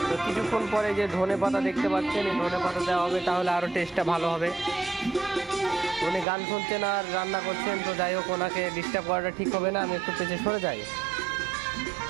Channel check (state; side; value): drops out; left; at 6.2 s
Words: তো কিছুক্ষণ পরে যে ধনে পাতা দেখতে পাচ্ছেন, এই ধনে পাতা দেওয়া হবে, তাহলে আরও টেস্টটা ভালো হবে। উনি গান শুনছেন আর রান্না করছেন, তো যাই হোক ওনাকে ডিস্টার্ব করাটা ঠিক হবে না, আমি একটু পেছনে সরে যাই।